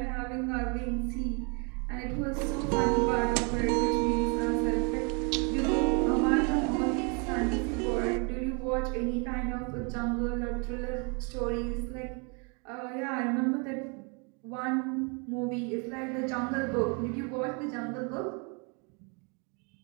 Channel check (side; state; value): left; quieter; 34.4 dB